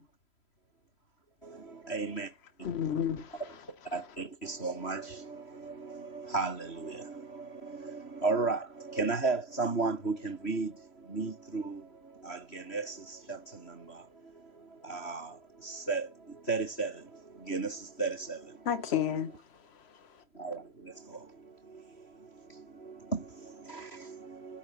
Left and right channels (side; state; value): right; late; 3.0 ms